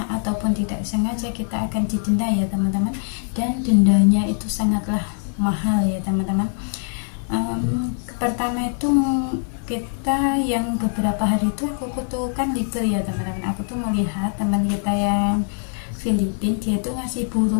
ataupun tidak sengaja, kita akan didenda ya teman-teman. Dan dendanya itu sangatlah mahal ya teman-teman. Pertama itu kita yang beberapa hari itu aku tuh kan libur ya teman-teman, aku tuh melihat teman kita yang Filipina, dia tuh ngasih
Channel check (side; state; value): right; silent; digital silence